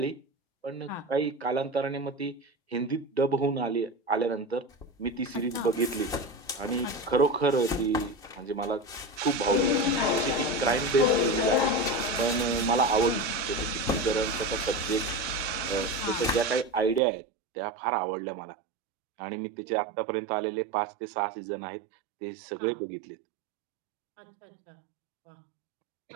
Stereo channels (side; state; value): left; drops out; at 17.0 s